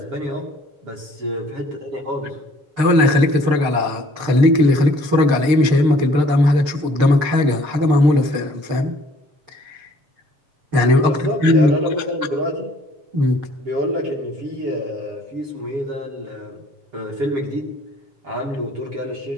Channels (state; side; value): late; left; 6.6 ms